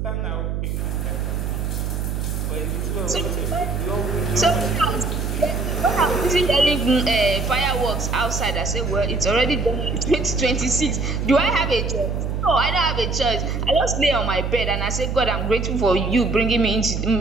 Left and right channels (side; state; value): right; noise; hum, 2 dB below the sound